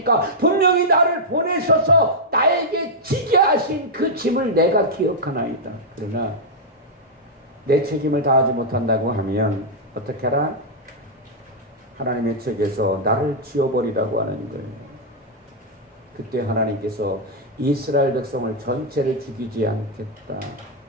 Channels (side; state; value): both; normal; correlation -0.04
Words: 분명히 나를 보내셔서 나에게 지게 하신 그 짐을 내가 기억하나이다. 그러나 내 책임을 다하지 못한다고 하면 어떻게 하라? 하나님의 책에서 나를 지워버리라고 하는 거예요. 그때 하나님께서 이스라엘 백성을 전체를 죽이지 않겠다.